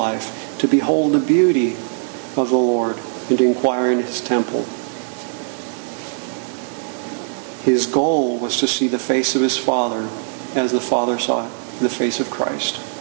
to behold the beauty of the Lord, and to inquire in his temple. His goal was to see the face of his Father as the Father saw the face of Christ.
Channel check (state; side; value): silent; left; 66 dB below the other